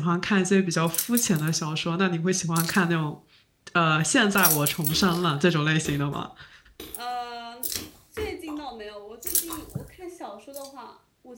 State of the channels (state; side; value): identical; both; correlation 1.00